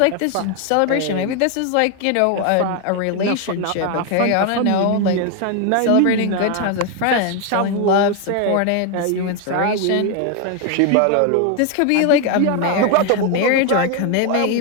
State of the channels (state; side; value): different; both; correlation 0.01